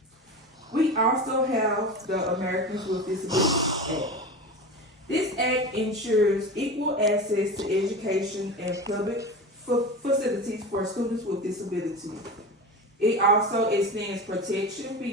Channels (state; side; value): normal; both; correlation 0.28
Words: We also have the Americans with Disabilities Act. This act ensures equal access to education and public facilities for students with disabilities. It also extends protection